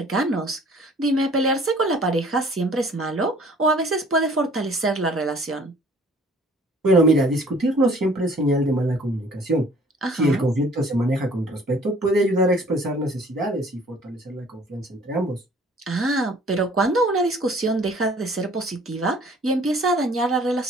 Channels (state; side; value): normal; both; correlation 0.54